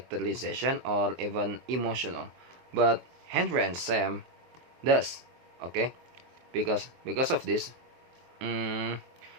or even emotional, but Henry and Sam does. Okay, because of this,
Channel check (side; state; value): left; late; 23 ms